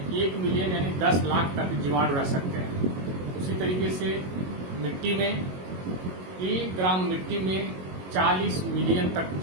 मिलियन यानी 10 लाख तक जीवाणु रह सकते हैं। उसी तरीके से मिट्टी में 1 ग्राम मिट्टी में 40 मिलियन तक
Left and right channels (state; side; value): late; left; 22 ms